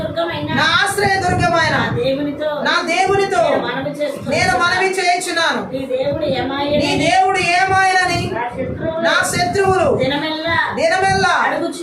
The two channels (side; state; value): both; identical; correlation 1.00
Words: నా ఆశ్రయ దుర్గమైన నా దేవునితో నేను మనవి చేయుచున్నాను. నీ దేవుడు ఏమాయనని నా శత్రువులు దినమెల్లా